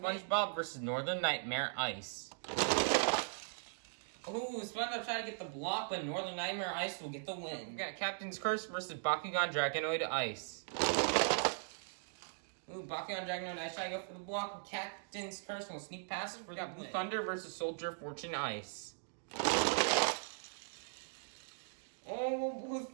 versus Northern Nightmare Ice. Ooh, SpongeBob tried to get the block, but Northern Nightmare Ice will get the win. We've got Captain's Curse versus Bakugan Dragonoid Ice. Ooh, Bakugan Dragonoid Ice try to go for the block with Captain's Curse will sneak past for the Blue Thunder versus Soldier Fortune Ice. Oh, will Blue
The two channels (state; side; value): silent; left; digital silence